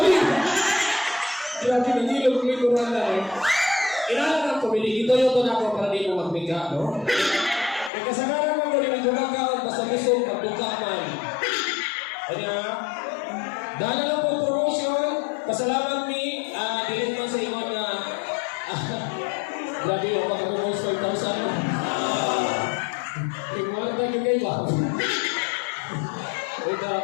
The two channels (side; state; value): right; drops out; at 7.9 s